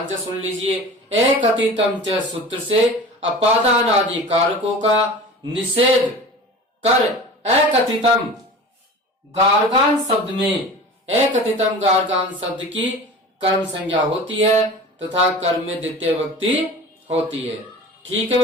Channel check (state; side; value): normal; both; correlation 0.37